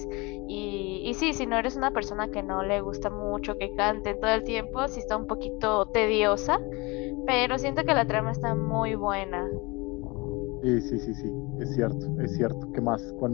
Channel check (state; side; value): quieter; right; 25.7 dB